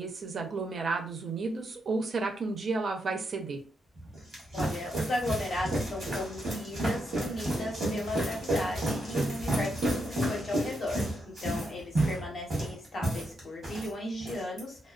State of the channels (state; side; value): normal; both; correlation 0.81